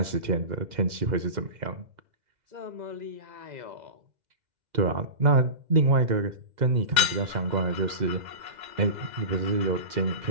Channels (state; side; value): late; left; 2.0 ms